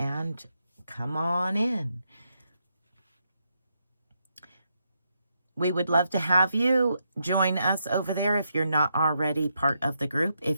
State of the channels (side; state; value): both; inverted; correlation -0.81